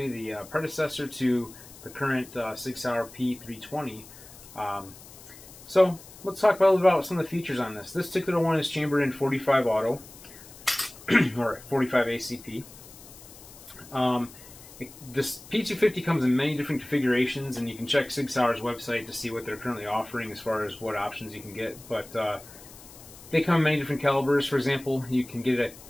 the predecessor to the current Sig Sauer P320. So let's talk about some of the features on this. This particular one is chambered in 45 auto, or 45 ACP. This P250 comes in many different configurations, and you can check Sig Sauer's website to see what they're currently offering as far as what options you can get. But they come in many different calibers. For example, you can get it,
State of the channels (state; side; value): noise; left; hiss, 19 dB below the sound